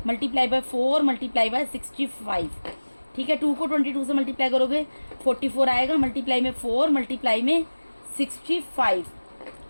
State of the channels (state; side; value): inverted; both; correlation -1.00